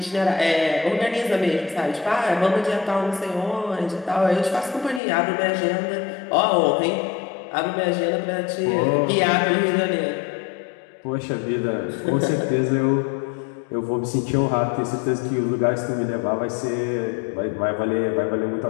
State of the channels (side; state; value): right; drops out; at 5.0 s